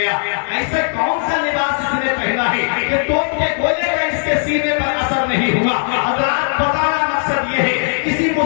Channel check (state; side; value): silent; right; digital silence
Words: ایسا کون سا لباس اس نے پہنا ہے کہ توپ کے گولے کا اس کے سینے پر اثر نہیں ہوا۔ حضرات بتانا مقصد یہ ہے، کسی